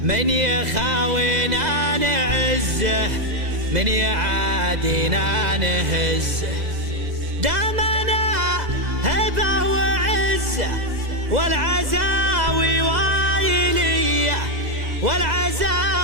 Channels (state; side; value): late; left; 2.0 ms